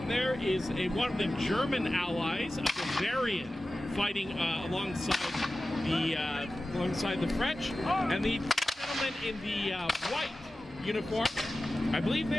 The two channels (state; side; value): normal; both; correlation 0.95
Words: there is one of the German allies, a Bavarian, fighting alongside the French, and the gentleman in the white uniform, I believe